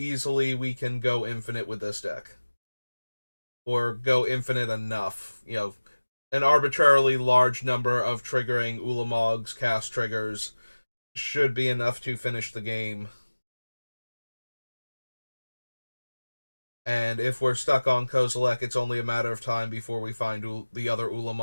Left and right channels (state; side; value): inverted; both; correlation -1.00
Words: we can go infinite with this deck. Or go infinite enough. An arbitrarily large number of triggering Ulamog's cast triggers should be enough to finish the game. And if we're stuck on Kozilek, it's only a matter of time before we find the other